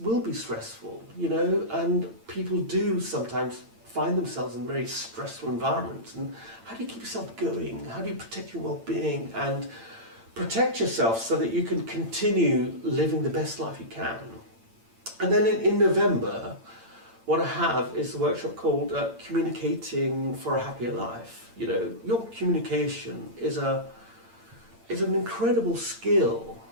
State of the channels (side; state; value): left; late; 8.8 ms